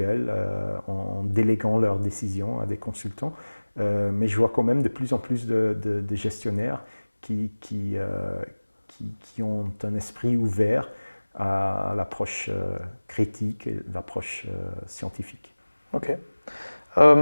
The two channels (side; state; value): both; inverted; correlation -1.00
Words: en déléguant leurs décisions à des consultants. Mais je vois quand même de plus en plus de gestionnaires qui ont un esprit ouvert à l'approche critique et l'approche scientifique. Ok.